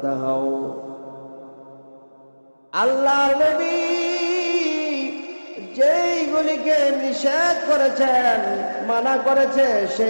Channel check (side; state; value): both; inverted; correlation -1.00